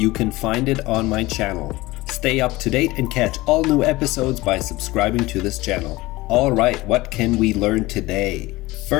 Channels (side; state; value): right; quieter; 19.9 dB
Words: can find it on my channel. Stay up to date and catch all new episodes by subscribing to this channel. Alright, what can we learn today?